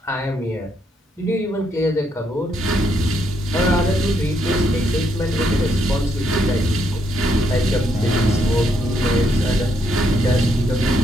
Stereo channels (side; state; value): both; normal; correlation 0.75